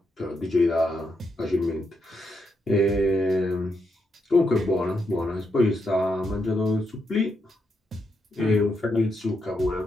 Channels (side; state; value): both; normal; correlation 0.81